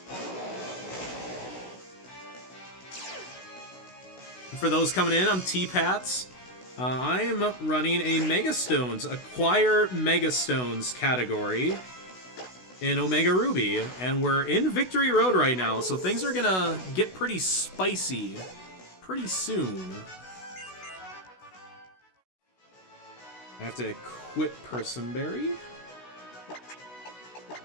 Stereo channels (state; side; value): late; right; 16 ms